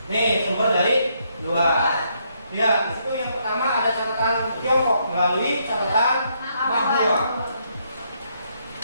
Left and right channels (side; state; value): both; inverted; correlation -0.74